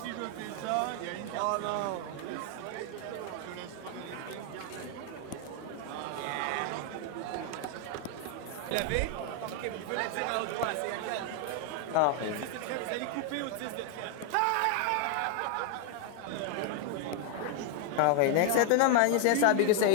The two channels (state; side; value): different; both; correlation 0.00